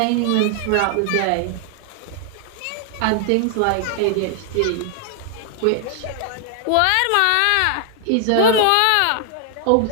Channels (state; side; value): different; both; correlation 0.00